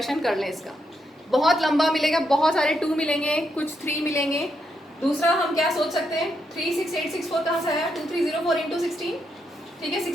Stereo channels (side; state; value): both; normal; correlation 0.80